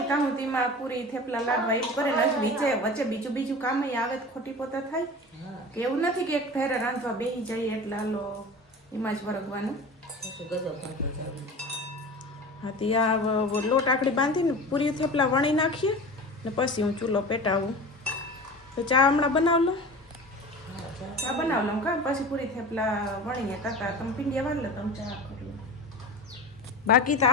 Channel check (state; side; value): normal; both; correlation 0.34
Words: તાહું તેમાં પૂરી થેપલા લાડવા એવું કરે ને હજી વચ્ચે બીજું કામ આવે તો ખોટી પોતા થાય હા કે એવું નથી કે એક ફેરે રાંધવા બેસી જઈએ એટલે હાલો એમાં જ વરગવાનું. પછી ગજબ પાકી જાવ. હા તે આ લોટ આકડી બાંધીને પૂરી થેપલા વણી નાખીએ ને પછી હું ચૂલો પેટાવું. તો ચા હમણાં બનાવ લો. ચા બનાવ લઉં કાં પછી પૂરી થેપલા વણીએ તાતા તમે પીંડિયા વાર લે તમે ચા કરી લો. બાકી તો